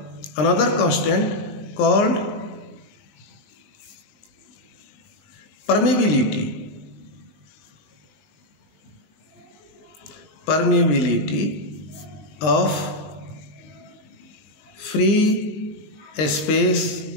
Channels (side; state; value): right; late; 20 ms